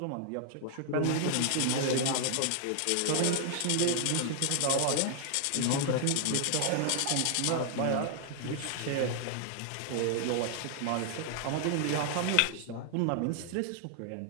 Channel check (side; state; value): both; different; correlation 0.00